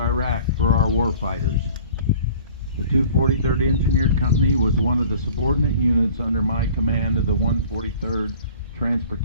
for our warfighters. The 243rd Engineered Company was one of the subordinate units under my command of the 143rd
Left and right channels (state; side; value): inverted; both; correlation -0.48